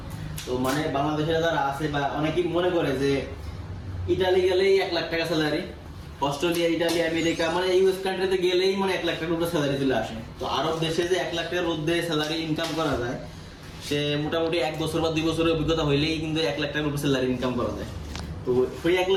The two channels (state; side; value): identical; both; correlation 1.00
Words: তো মানে বাংলাদেশে যারা আছে বা অনেকেই মনে করে যে ইটালি গেলেই 1 লাখ টাকা স্যালারি, অস্ট্রেলিয়া, ইটালি, আমেরিকা মানে ইউএস কান্ট্রিতে গেলেই মানে 1 লাখ টাকার উপরে স্যালারি চলে আসে। তো আরব দেশে যে 1 লাখ টাকার মধ্যে স্যালারি ইনকাম করা যায়, সে মোটামুটি 1 বছর বা 2 বছরের অভিজ্ঞতা হইলেই কিন্তু 1 লাখ টাকার উপরে স্যালারি ইনকাম করা যায়। তো ওই 1